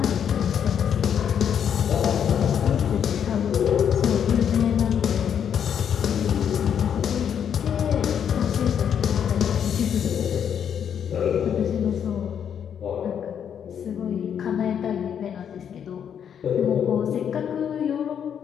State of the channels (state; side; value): quieter; right; 8.4 dB